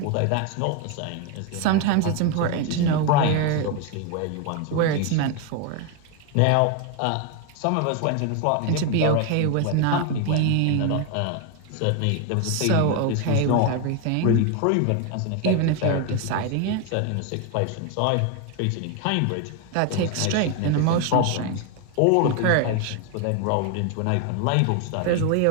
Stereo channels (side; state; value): both; different; correlation 0.01